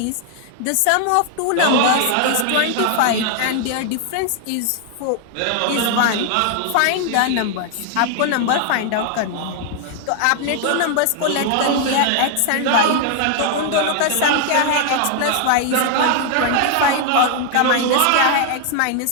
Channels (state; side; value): different; both; correlation 0.00